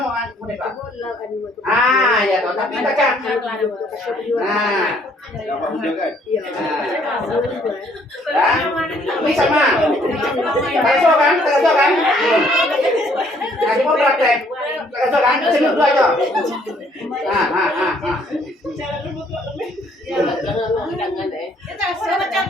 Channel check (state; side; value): normal; both; correlation 0.64